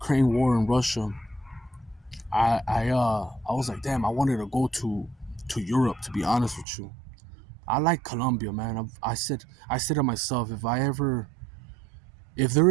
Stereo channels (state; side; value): drops out; left; at 6.7 s